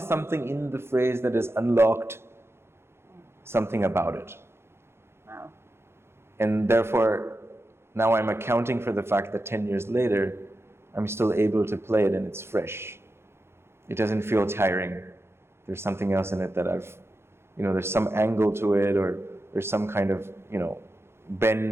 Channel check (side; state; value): left; late; 0.12 ms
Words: something in the phrase that has unlocked something about it. Wow. And therefore, now I'm accounting for the fact that 10 years later, I'm still able to play it and it's fresh. It doesn't feel tiring. There's something else in it that there's some angle to it, or there's some kind of,